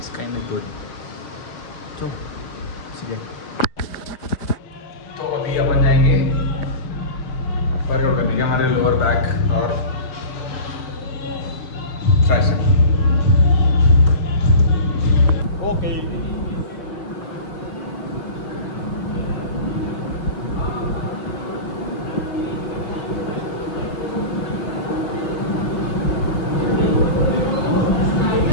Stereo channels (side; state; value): right; late; 5.8 ms